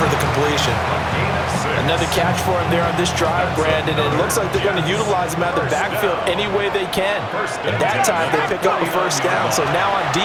the completion. Another catch for him there on this drive, Brandon, and it looks like they're going to utilize him out of the backfield any way they can. And that time, they pick up a first down. So now on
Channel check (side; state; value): both; identical; correlation 1.00